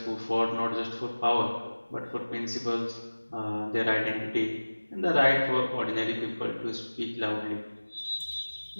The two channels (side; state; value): both; inverted; correlation -1.00